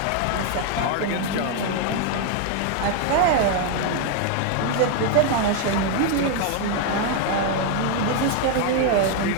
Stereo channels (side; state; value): both; different; correlation 0.01